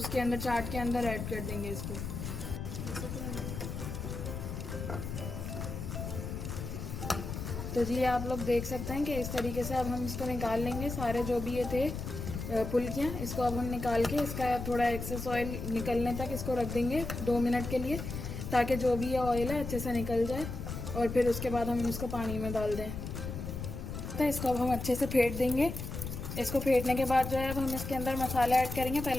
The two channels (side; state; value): left; noise; rumble, 6 dB below the sound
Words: अंदर चाट के अंदर ऐड कर देंगे इसको। तो जी आप लोग देख सकते हैं कि इस तरीके से अब हम इसको निकाल लेंगे सारे जो भी ये थे फुल्कियाँ। इसको अब हम निकाल के इसका थोड़ा एक्सेस ऑयल निकलने तक इसको रख देंगे 2 मिनट के लिए ताकि जो भी ये ऑयल है अच्छे से निकल जाए। और फिर उसके बाद हम इसको पानी में डाल दें। तो इसको अब हम अच्छे से फेंट देंगे। इसको फेंटने के बाद जो है अब हम इसके अंदर मसाला ऐड करेंगे।